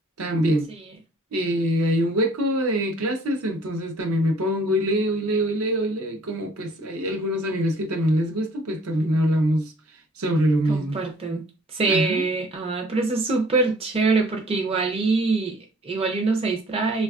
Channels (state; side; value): normal; both; correlation 0.56